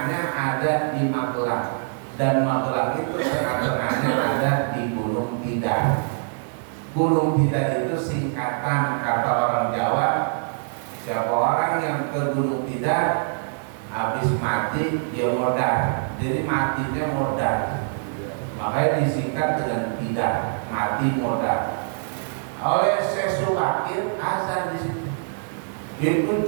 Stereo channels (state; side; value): silent; left; digital silence